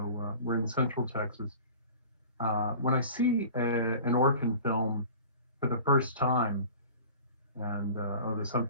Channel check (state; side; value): inverted; both; correlation -0.41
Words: we're in Central Texas. When I see an orphan film for the first time, and oh, there's